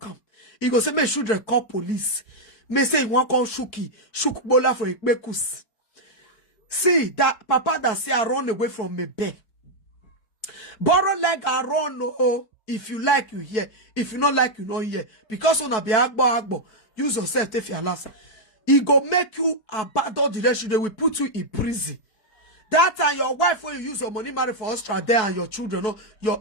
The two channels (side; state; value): right; late; 4.6 ms